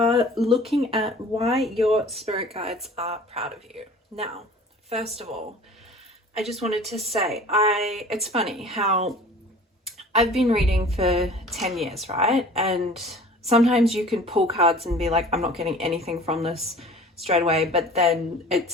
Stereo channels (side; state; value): both; normal; correlation 0.45